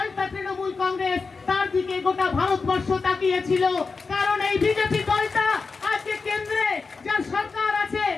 তৃণমূল কংগ্রেস, তার দিকে গোটা ভারতবর্ষ তাকিয়েছিল। কারণ এই বিজেপি দলটা আজকে কেন্দ্রে যার সরকার আছে,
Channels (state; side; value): quieter; right; 4.5 dB